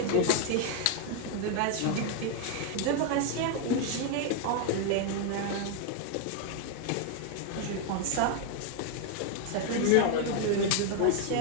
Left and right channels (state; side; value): different; both; correlation 0.00